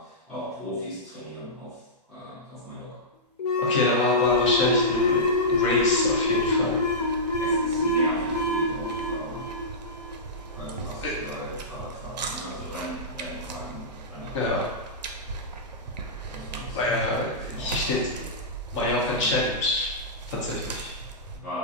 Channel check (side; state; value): both; normal; correlation -0.15